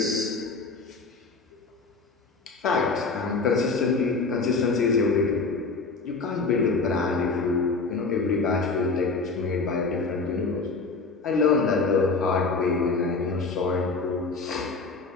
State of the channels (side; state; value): right; quieter; 4.1 dB